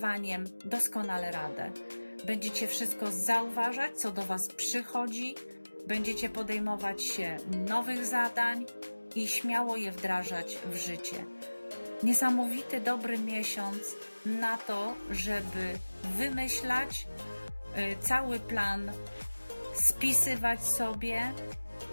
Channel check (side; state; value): both; inverted; correlation -1.00